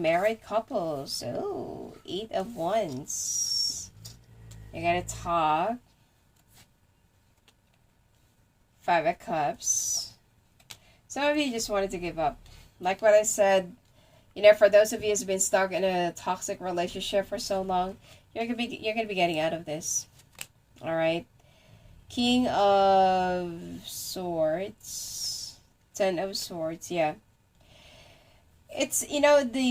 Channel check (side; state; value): both; identical; correlation 1.00